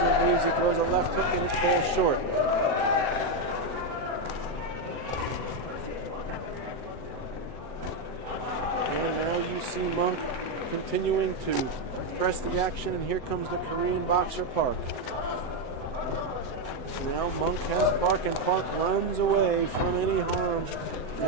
leaves, he throws a left hook and it falls short. And now you see Munkh continuing to press the action, and here comes the Korean boxer Park. Now Munkh has Park, and Park runs away from any harm,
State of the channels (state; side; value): late; right; 7.9 ms